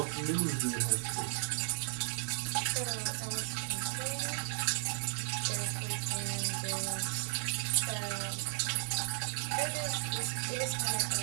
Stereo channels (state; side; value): silent; left; digital silence